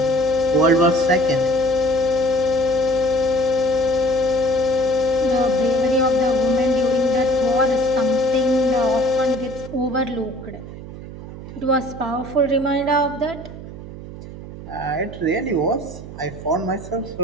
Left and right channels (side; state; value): right; noise; hum, 13 dB below the sound